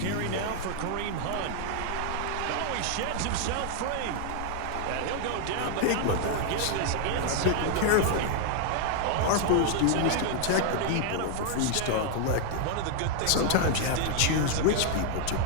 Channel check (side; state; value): both; different; correlation 0.00